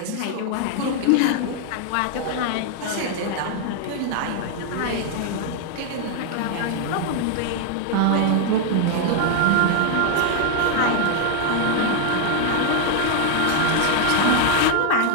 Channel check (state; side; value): different; both; correlation 0.00